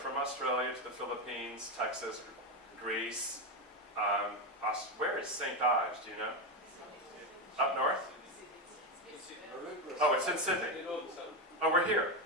Australia to the Philippines, Texas, Greece. Where is St. Ives? Do you know? Up north? Oh, it's in Sydney. In all the sun. Oh, we're here.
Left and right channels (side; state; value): both; normal; correlation 0.11